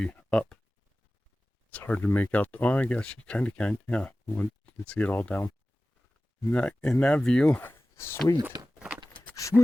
up. It's hard to make out. Oh, I guess you kind of can. Yeah, you can see it all down. In that view, sweet.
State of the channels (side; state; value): both; normal; correlation 0.96